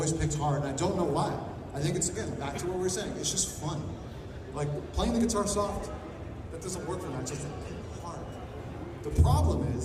picked hard, and I don't know why. I think it's, again, back to what we were saying. It's just fun. Like, playing the guitar soft, that doesn't work for me. I just pick hard. The problem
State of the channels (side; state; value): both; identical; correlation 1.00